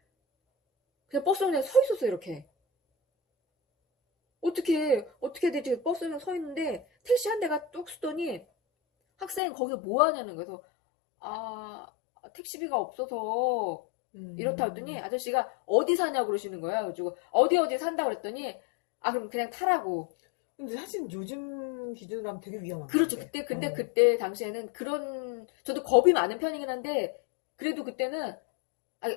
그냥 버스에 그냥 서 있었어, 이렇게. 어떻게 되지? 버스에 그냥 서 있는데 택시 한 대가 뚝 쓰더니 학생 거기서 뭐 하냐는 거예요. 그래서 택시비가 없어서 이렇다 했더니 아저씨가 어디 사냐고 그러시는 거야. 그래가지고 어디 산다고 그랬더니 그럼 그냥 타라고. 근데 사실 요즘 기준으로 하면 되게 위험한 그렇죠. 건데. 근데 그때 당시에는 저도 겁이 많은 편이긴 한데, 그래도 그때는,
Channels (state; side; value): drops out; right; at 9.4 s